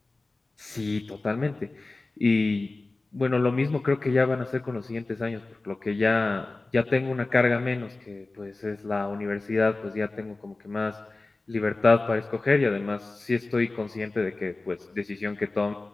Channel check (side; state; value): right; quieter; 3.3 dB